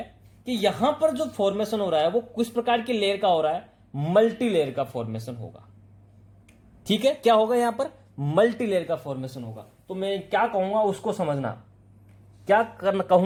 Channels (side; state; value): both; identical; correlation 1.00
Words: कि यहां पर जो फॉर्मेशन हो रहा है वो किस प्रकार की लेयर का हो रहा है, मल्टी लेयर का फॉर्मेशन होगा। ठीक है, क्या होगा यहां पर, मल्टी लेयर का फॉर्मेशन होगा। तो मैं क्या कहूंगा उसको समझना, क्या